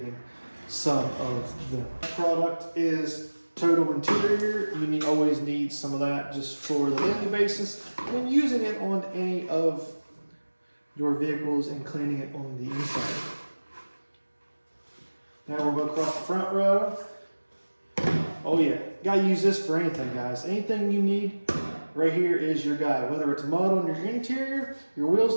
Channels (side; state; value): both; inverted; correlation -1.00